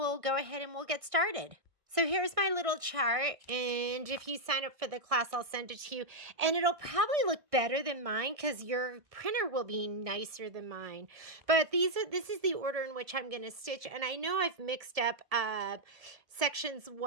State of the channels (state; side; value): late; left; 1.5 ms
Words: go ahead and we'll get started. So here's my little chart, and if you sign up for the class, I'll send it to you. And it'll probably look better than mine because your printer will be nicer than mine. But this is the order in which I'm going to stitch. And I know I've mixed up sections